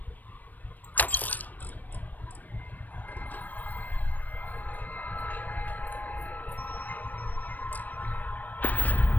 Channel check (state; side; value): late; right; 0.085 ms